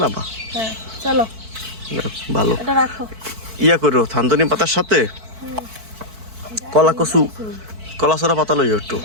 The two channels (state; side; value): late; left; 4.5 ms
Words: না বা? হ্যাঁ চলো, ভালো। এটা রাখো। ইয়া করো, থানতনি পাতার সাথে কলা কচু, কলা সরা পাতা লইও একটু।